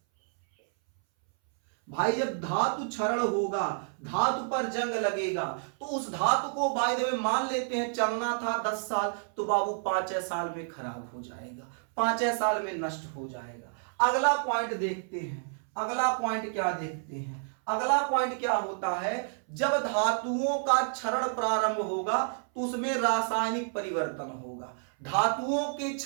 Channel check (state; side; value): silent; left; 58 dB below the other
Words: भाई जब धातु क्षरण होगा, धातु पर जंग लगेगा, तो उस धातु को बाय द वे मान लेते हैं चलना था 10 साल, तो बाबू 5 साल में खराब हो जाएगा, 5 साल में नष्ट हो जाएगा। अगला पॉइंट देखते हैं, अगला पॉइंट क्या देखते हैं, अगला पॉइंट क्या होता है, जब धातुओं का क्षरण प्रारंभ होगा तो उसमें रासायनिक परिवर्तन होगा। धातुओं के